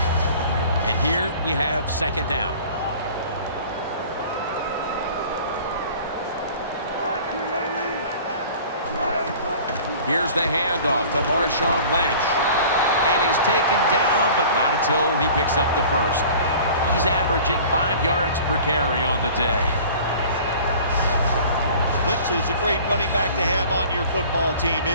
And here we have second down. Here's the handoff to Marshawn Lynch. And he's taken down, but not until he picks up the first. He's averaging 5 yards per carry on the day. Lynch is a great running back to have on your football team,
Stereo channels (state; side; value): inverted; both; correlation -0.45